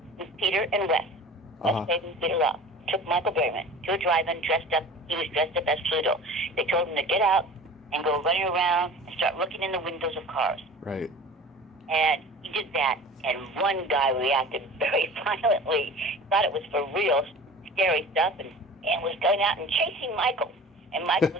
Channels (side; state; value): both; normal; correlation 0.40